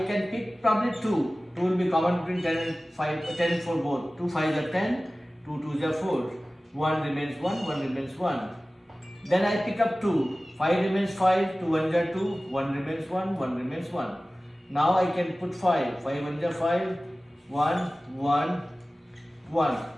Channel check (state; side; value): normal; both; correlation 0.97